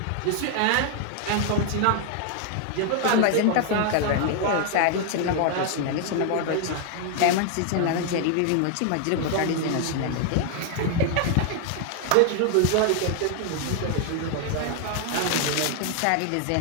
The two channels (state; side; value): different; both; correlation 0.00